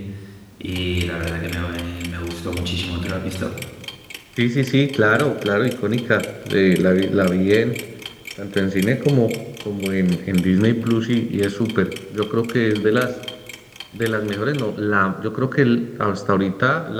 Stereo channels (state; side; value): identical; both; correlation 1.00